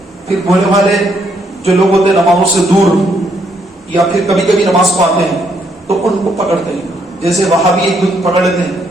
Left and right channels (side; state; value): both; normal; correlation 0.73